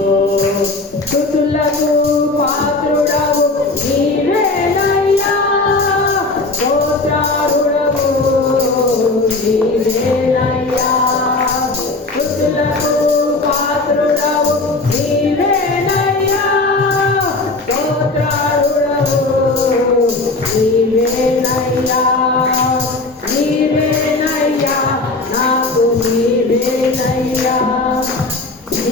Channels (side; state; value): right; quieter; 3.3 dB